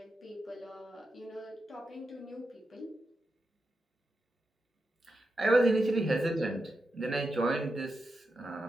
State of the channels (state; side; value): normal; both; correlation 0.88